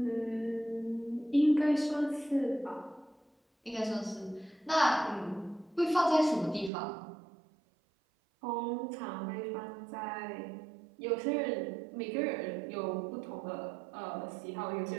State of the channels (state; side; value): drops out; left; at 6.7 s